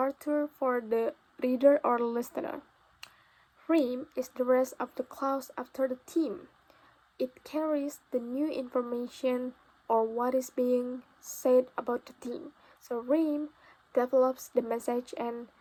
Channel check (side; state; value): both; identical; correlation 1.00